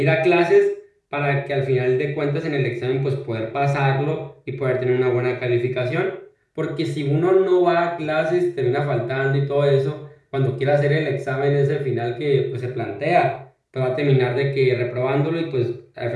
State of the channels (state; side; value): identical; both; correlation 1.00